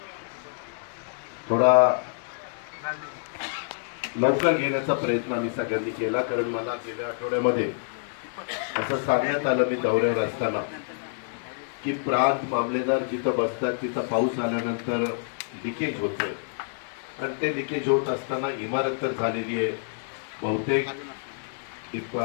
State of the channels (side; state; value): right; silent; digital silence